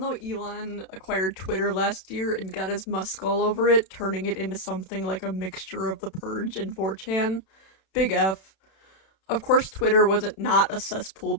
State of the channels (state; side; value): late; right; 31 ms